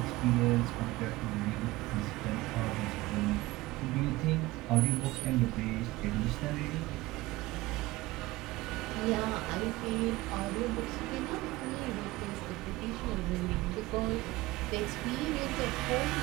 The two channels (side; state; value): left; quieter; 19.3 dB